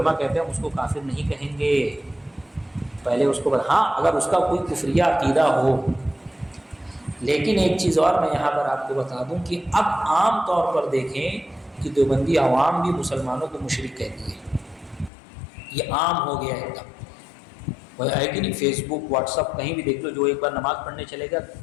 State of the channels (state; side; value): drops out; right; at 15.1 s